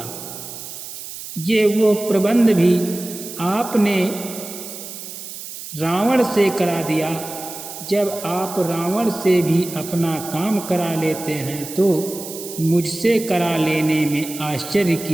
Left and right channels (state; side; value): noise; right; hiss, 11 dB below the sound